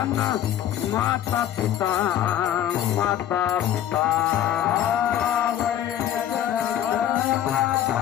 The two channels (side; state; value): right; quieter; 11.1 dB